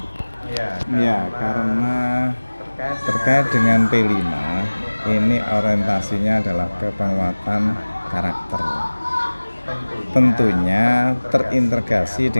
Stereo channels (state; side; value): inverted; both; correlation -1.00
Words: Ya, karena terkait dengan P5 ini orientasinya adalah ke penguatan karakter. Tentunya terintegrasi